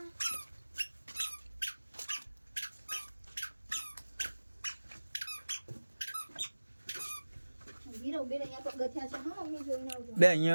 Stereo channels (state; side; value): inverted; both; correlation -1.00